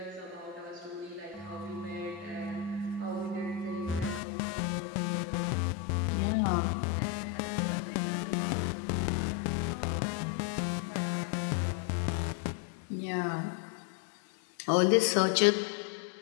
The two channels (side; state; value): right; drops out; at 4.2 s